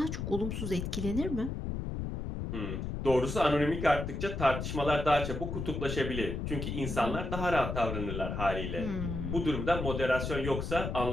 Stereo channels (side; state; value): left; noise; rumble, 4 dB below the sound